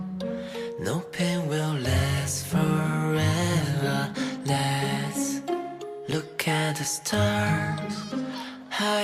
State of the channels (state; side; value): identical; both; correlation 1.00